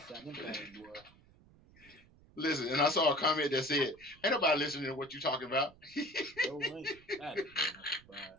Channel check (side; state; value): right; noise; rumble, 25 dB below the sound